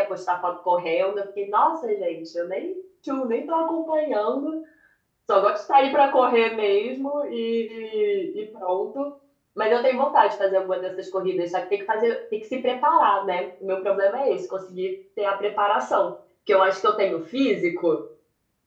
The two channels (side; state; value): both; identical; correlation 1.00